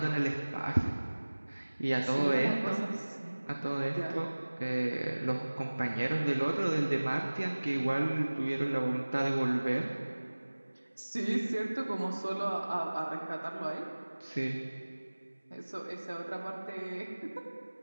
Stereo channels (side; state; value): both; inverted; correlation -1.00